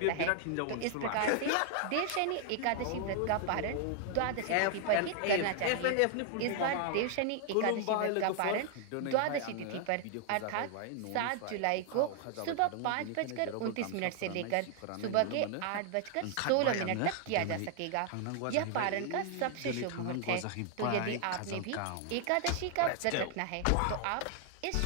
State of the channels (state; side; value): different; both; correlation 0.00